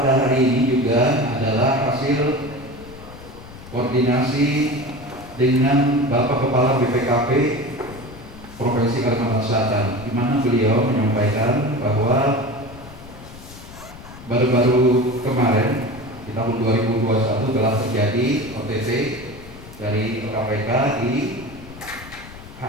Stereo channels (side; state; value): left; noise; rumble, 17 dB below the sound